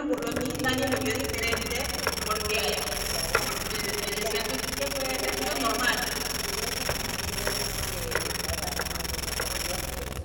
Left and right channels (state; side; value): identical; both; correlation 1.00